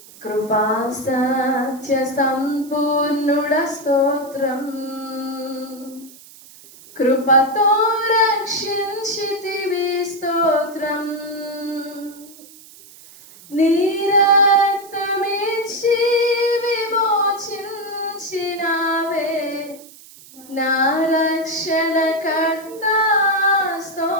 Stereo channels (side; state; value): right; noise; hiss, 21 dB below the sound